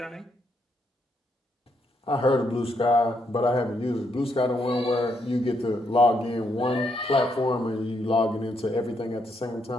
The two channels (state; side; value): normal; both; correlation 0.76